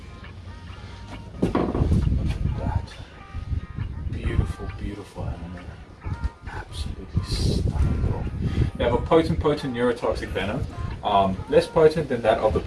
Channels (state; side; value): identical; both; correlation 1.00